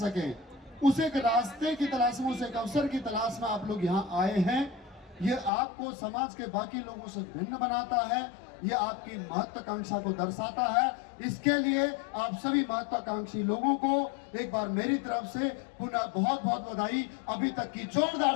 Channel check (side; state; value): right; drops out; at 5.5 s